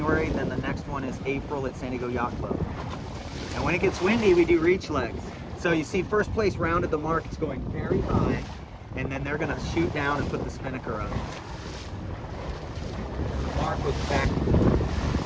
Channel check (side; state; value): both; identical; correlation 1.00